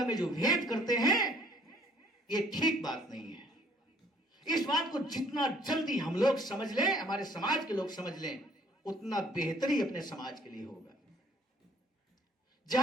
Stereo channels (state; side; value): normal; both; correlation 0.59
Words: में जो भेद करते हैं ये ठीक बात नहीं है। इस बात को जितना जल्दी हम लोग समझ लें, हमारे समाज के लोग समझ लें, उतना बेहतरी अपने समाज के लिए होगा।